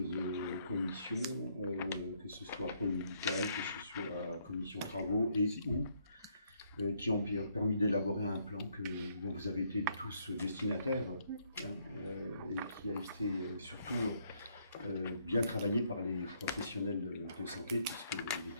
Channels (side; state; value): both; inverted; correlation -0.70